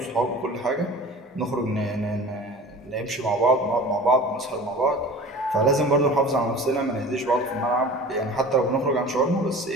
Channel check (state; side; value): normal; both; correlation 0.40